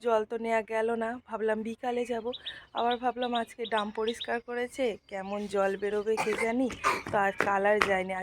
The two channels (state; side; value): identical; both; correlation 1.00